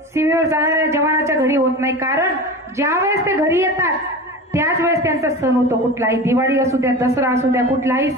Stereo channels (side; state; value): both; normal; correlation 0.31